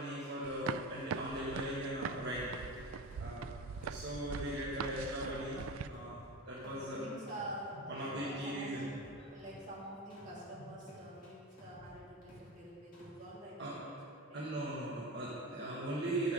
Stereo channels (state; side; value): normal; both; correlation 0.26